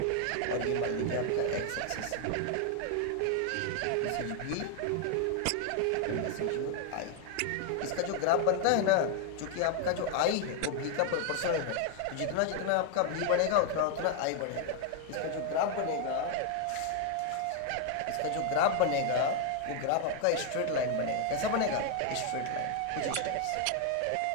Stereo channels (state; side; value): different; both; correlation 0.00